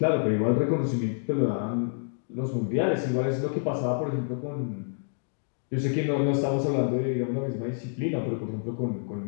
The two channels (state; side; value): silent; right; digital silence